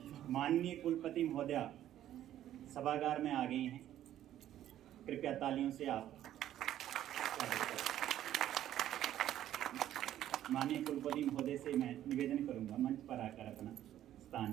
माननीय कुलपति महोदया सभागार में आ गई हैं। कृपया तालियों से आप माननीय कुलपति महोदय से मैं निवेदन करूंगा मंच पर आकर अपना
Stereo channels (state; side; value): quieter; left; 12.1 dB